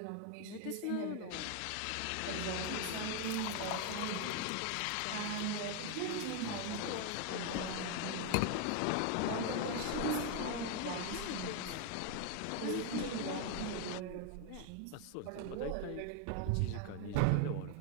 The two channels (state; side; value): different; both; correlation 0.01